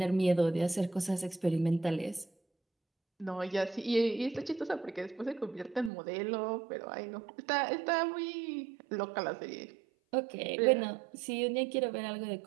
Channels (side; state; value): left; drops out; at 5.9 s